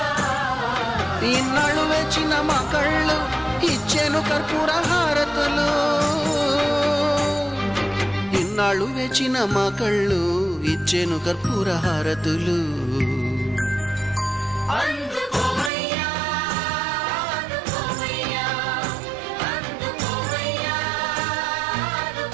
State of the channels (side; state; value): left; drops out; at 15.7 s